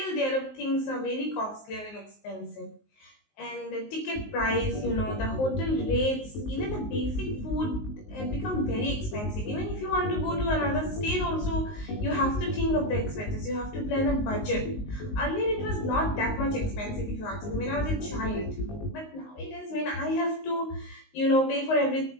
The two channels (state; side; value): late; right; 19 ms